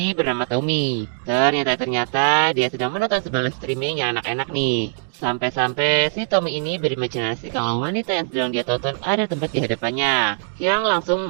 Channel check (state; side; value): silent; left; digital silence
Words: bernama Tommy. Ternyata dia sedang menonton sebuah live streaming yang enak-enak nih. Sampai-sampai si Tommy ini berimajinasi kalau wanita yang sedang dia tonton ada tempat di hadapannya, yang langsung